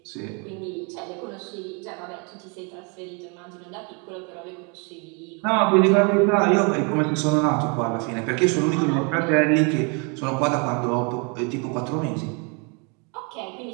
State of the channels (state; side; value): quieter; left; 34.0 dB